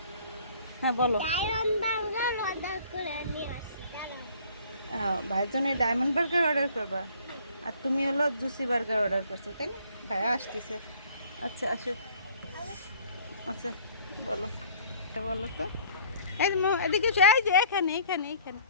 হ্যাঁ বলো। ভাইয়ের জন্য ডায়মন্ড বার্গার অর্ডার করবা, আর তুমি হলো জুসি বার্গার অর্ডার করছো, তাই না? ভাইয়া আসতেছে। আচ্ছা আসো। আচ্ছা বলো, বলো তো। এই যে এদিকে এসো, এই যে এখানে এখানে এখানে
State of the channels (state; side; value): inverted; both; correlation -0.55